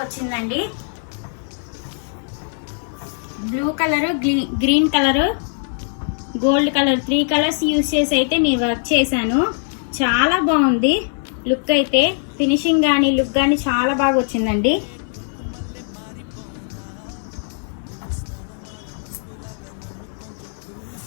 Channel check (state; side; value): silent; right; 62 dB below the other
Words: వచ్చిందండి. Blue colour, green colour, gold colour 3 colours use చేసి అయితే నేను వర్క్ చేశాను. చాలా బాగుంది లుక్ అయితే, ఫినిషింగ్ కానీ లుక్ కానీ చాలా బాగా వచ్చిందండి.